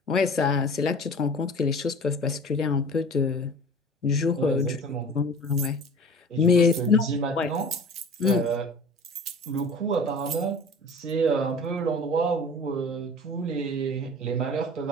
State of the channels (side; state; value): both; normal; correlation 0.42